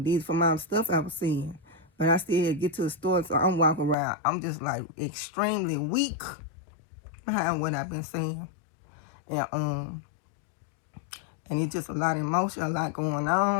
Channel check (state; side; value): drops out; right; at 4.0 s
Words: from my stuff I was seeing. But I still had to get to the store, so I'm walking around. I'm just like extremely weak behind what I've been seeing. And and it's just a lot of emotion, a lot going